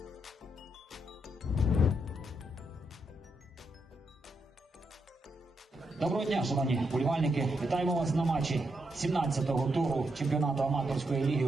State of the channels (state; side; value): normal; both; correlation 0.81